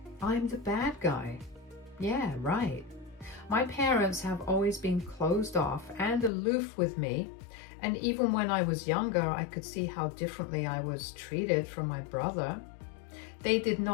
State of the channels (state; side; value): drops out; right; at 6.3 s